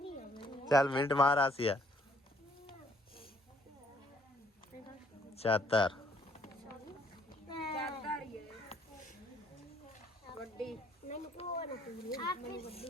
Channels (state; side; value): normal; both; correlation 0.63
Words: ਚੱਲ ਮਿੰਟ ਮਾਰ ਆਸੀਆ ਚਾਦਰ ਚਾਦਰ ਹੀ ਹੈ ਵੱਡੀ ਮੈਨੂੰ ਕੋਲ ਆਪੇ